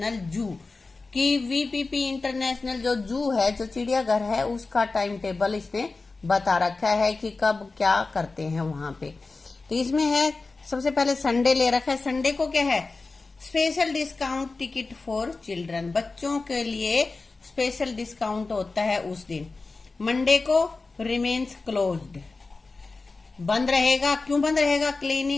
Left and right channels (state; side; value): quieter; right; 3.8 dB